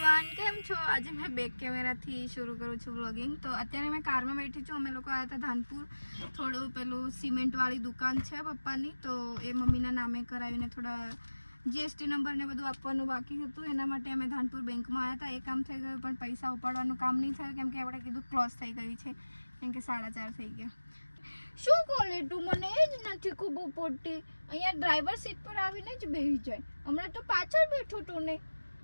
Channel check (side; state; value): both; inverted; correlation -1.00